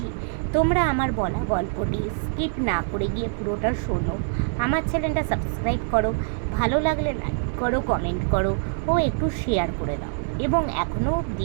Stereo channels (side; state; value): left; silent; 62 dB below the other